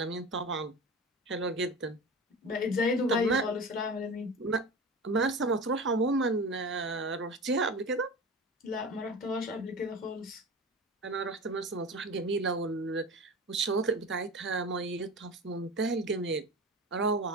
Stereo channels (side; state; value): both; normal; correlation 0.30